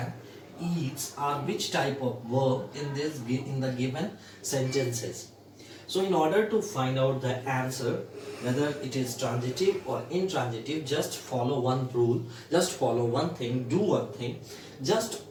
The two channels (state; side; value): identical; both; correlation 1.00